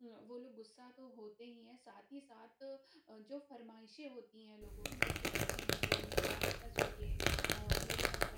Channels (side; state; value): both; identical; correlation 1.00